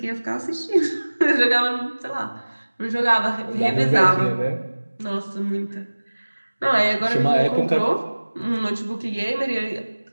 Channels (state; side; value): inverted; both; correlation -1.00